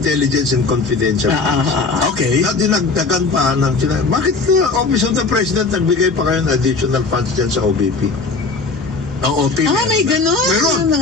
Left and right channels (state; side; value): quieter; right; 4.0 dB